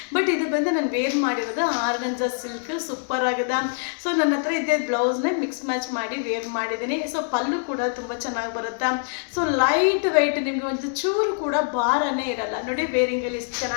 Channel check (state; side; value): silent; right; digital silence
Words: ಬಟ್ ಇದು ಬಂದು ನಾನು ವೇರ್ ಮಾಡಿರೋದು ಆರ್ಗಂಜಾ ಸಿಲ್ಕ್, ಸೂಪರ್ ಆಗಿದೆ. ಸೊ ನನ್ನ ಹತ್ರ ಇದ್ದ ಬ್ಲೌಸ್ನ ಮಿಕ್ಸ್ ಮ್ಯಾಚ್ ಮಾಡಿ ವೇರ್ ಮಾಡಿದ್ದೀನಿ. ಸೊ ಪಲ್ಲು ಕೂಡ ತುಂಬ ಚೆನ್ನಾಗಿ ಬರುತ್ತೆ. ಸೊ ಲೈಟ್ ವೆಯ್ಟ್, ನಿಮಗೆ ಒಂದು ಚೂರು ಕೂಡ ಭಾರನೇ ಇರಲ್ಲ. ನೋಡಿ ವೇರಿಂಗಲ್ಲಿ ಇಷ್ಟು